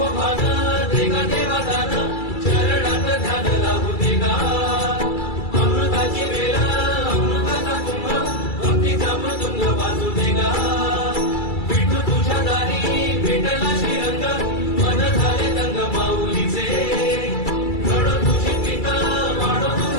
भान देगा देवा दान चरणात ध्यान लागू देगा अमृताची वेळ अमृताचा कुंभ भक्तीचा मृदुंग वाजू देगा विठू तुझ्या दारी भेटला श्रीरंग मन झाले दंग माऊलीचे घडो तुझी पिता वाढो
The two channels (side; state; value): right; late; 2.3 ms